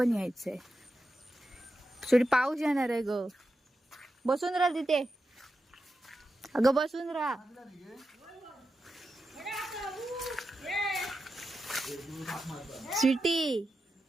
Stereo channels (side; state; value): both; normal; correlation 0.89